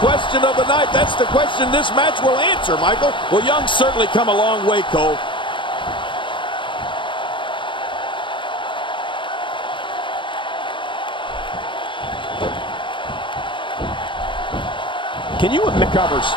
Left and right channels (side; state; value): right; late; 0.24 ms